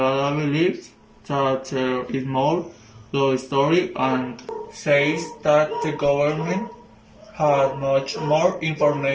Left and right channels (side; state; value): both; identical; correlation 1.00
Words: believes that there is more to the story and says that the government has much more